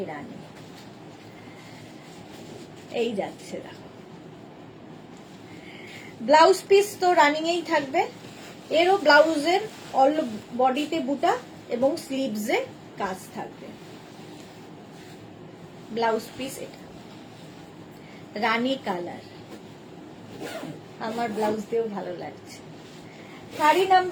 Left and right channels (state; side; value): identical; both; correlation 1.00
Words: রানী। এই যাচ্ছে দেখো, ব্লাউজ পিস তো রানিং এই থাকবে, এরও ব্লাউজের অল বডিতে বুটা এবং স্লিভসে কাজ থাকবে। ব্লাউজ পিস এটা রানী কালার, আমার ব্লাউজ দিয়েও ভালো লাগছে। শাড়ি